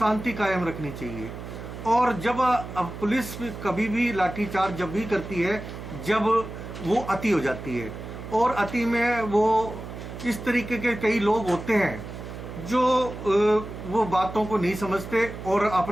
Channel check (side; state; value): right; noise; hum, 10 dB below the sound